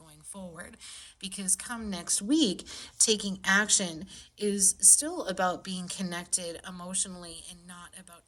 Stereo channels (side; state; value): both; normal; correlation 0.93